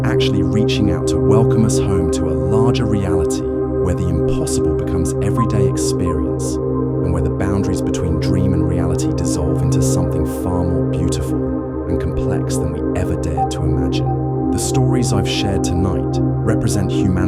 actually reaching out to welcome us home to a larger reality where the impossible becomes everyday experience and where the boundaries between dream and reality dissolve into something far more beautiful and complex than we ever dared to imagine. The stories I've shared tonight represent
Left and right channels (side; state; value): both; identical; correlation 1.00